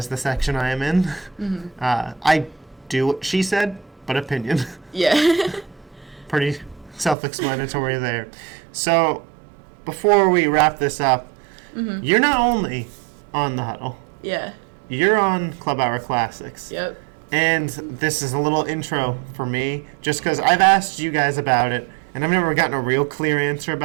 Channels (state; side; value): drops out; left; at 7.2 s